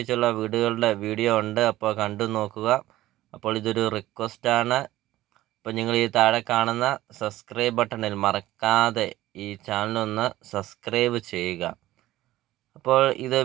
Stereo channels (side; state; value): left; quieter; 15.7 dB